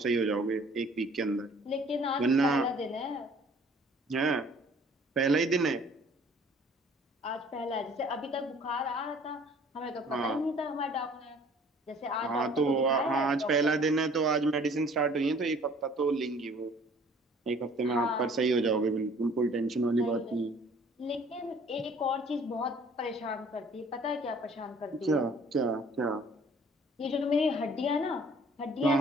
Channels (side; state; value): both; normal; correlation 0.54